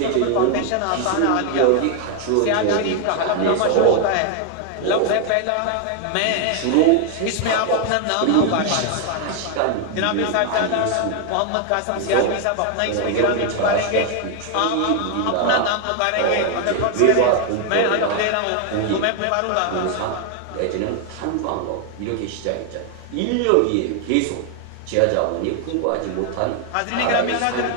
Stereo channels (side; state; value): both; different; correlation 0.00